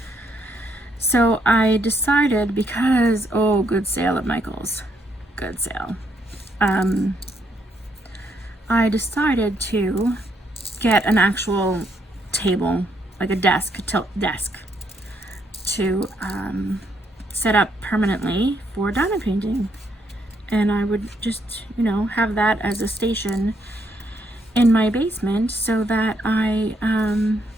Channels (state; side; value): normal; both; correlation 0.74